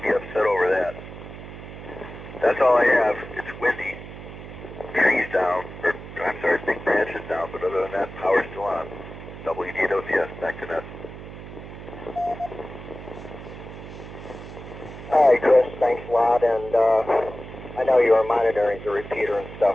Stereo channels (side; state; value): right; noise; hum, 13 dB below the sound